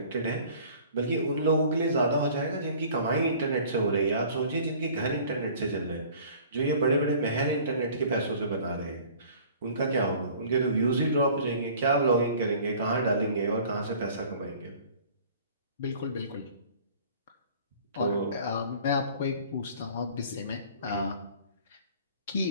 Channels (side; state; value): both; inverted; correlation -0.49